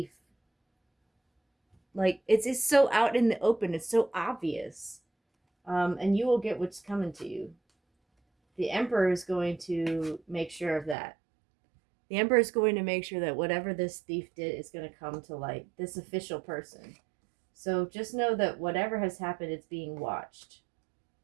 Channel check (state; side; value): drops out; left; at 11.0 s